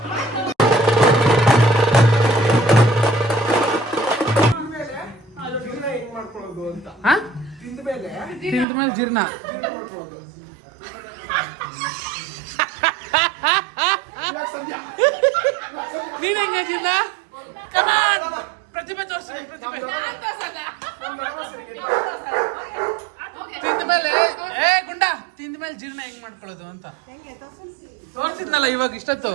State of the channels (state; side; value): drops out; left; at 8.7 s